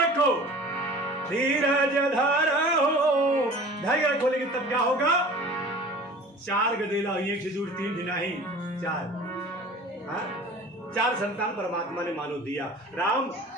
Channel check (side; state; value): both; normal; correlation 0.42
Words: धीरज धरो, धैर्य रखो। लेकिन तब क्या होगा? 4 गदेला हुई, 1 से दूर 3 दिन नहीं 4 4 संतान परमात्मा ने मानो दिया, राम